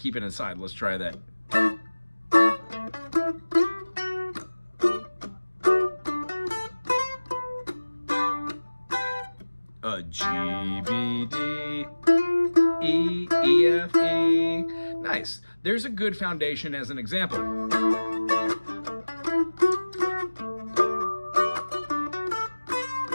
it inside, let's try that. G, B, D, E, E, F, E. Nice. There's a good foundation as an example.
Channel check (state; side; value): inverted; both; correlation -1.00